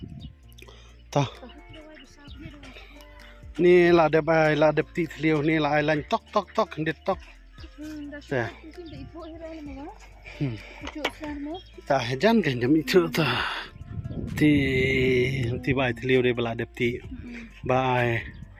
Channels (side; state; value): both; identical; correlation 1.00